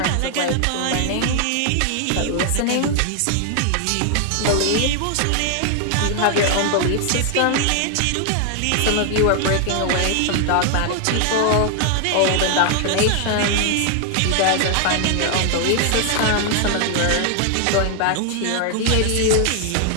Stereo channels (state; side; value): different; both; correlation 0.00